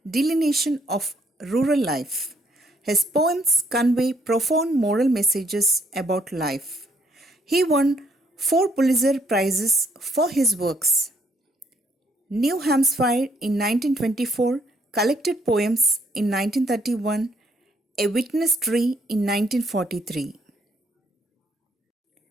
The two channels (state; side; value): normal; both; correlation 0.69